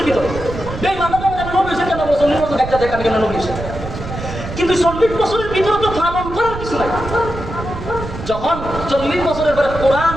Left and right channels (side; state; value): right; noise; rumble, 9 dB below the sound